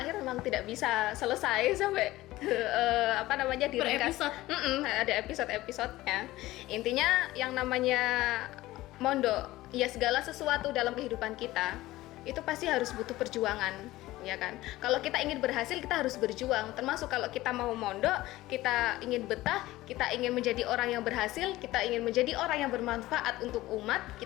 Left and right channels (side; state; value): right; quieter; 17.3 dB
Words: memang tidak bisa selesai sampai diringkas. episode. Ada episode-episodenya. Intinya yang namanya mondok, ya segala sesuatu dalam kehidupan kita itu pasti harus butuh perjuangan, ya kan? Kalau kita ingin berhasil, kita harus berjuang. Termasuk kalau kita mau mondok, kita ingin betah, kita ingin menjadi orang yang berhasil, kita ingin menjadi orang yang bermanfaat untuk umat,